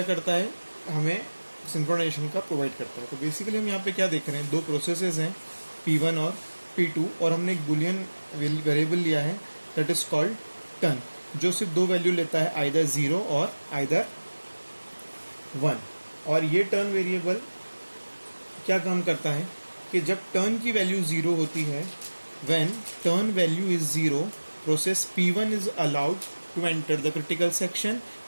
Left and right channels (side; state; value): both; inverted; correlation -1.00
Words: करता है, हमें सिंक्रोनाइजेशन का प्रोवाइड करता है. तो बेसिकली हम यहाँ पे क्या देख रहे हैं, दो प्रोसेसेस हैं P1 और P2 और हमने एक बुलियन वेरिएबल लिया है दैट इज कॉल्ड टर्न, जो सिर्फ दो वैल्यू लेता है, आइदर 0 और आइदर 1. और ये टर्न वेरिएबल क्या काम करता है कि जब टर्न की वैल्यू 0 होती है, when turn value is 0, process P1 is allowed to enter the critical section